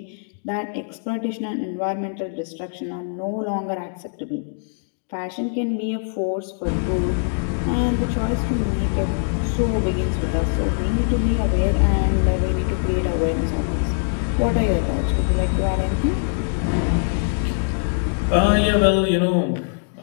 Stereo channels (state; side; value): silent; right; digital silence